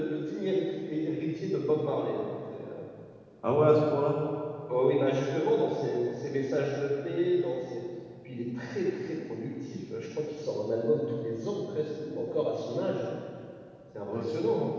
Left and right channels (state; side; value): identical; both; correlation 1.00